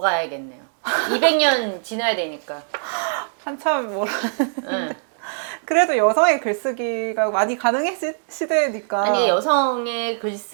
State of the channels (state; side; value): silent; left; 64 dB below the other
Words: 200년 지나야 되니까. 한참 뭐라 응. 그래도 여성의 글쓰기가 많이 가능해진 시대니까 아니 여성의